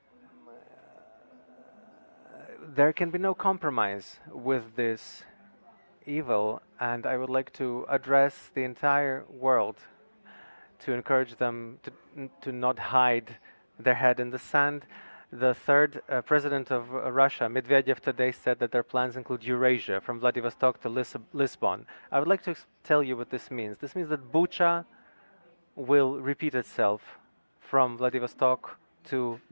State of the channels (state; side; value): inverted; both; correlation -1.00